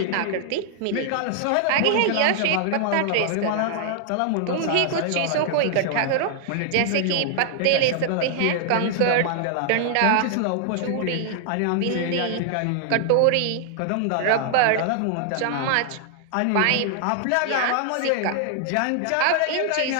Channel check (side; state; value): both; different; correlation 0.00